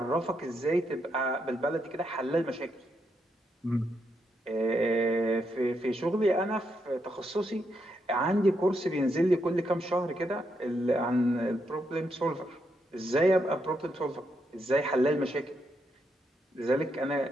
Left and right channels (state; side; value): normal; both; correlation 0.80